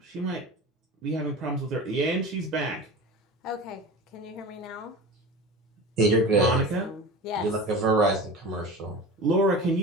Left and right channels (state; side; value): normal; both; correlation 0.33